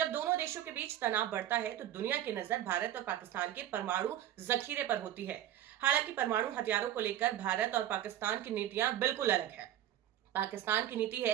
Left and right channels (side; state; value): left; quieter; 12.1 dB